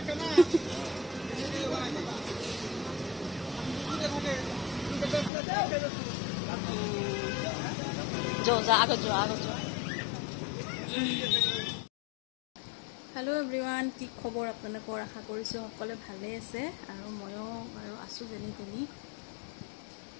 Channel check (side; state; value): right; drops out; at 5.3 s